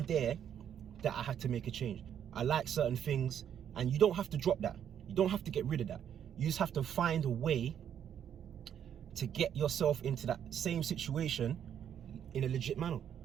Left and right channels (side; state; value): left; quieter; 9.2 dB